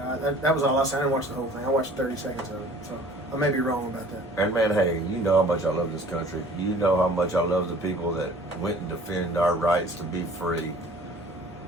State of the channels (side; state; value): both; normal; correlation 0.50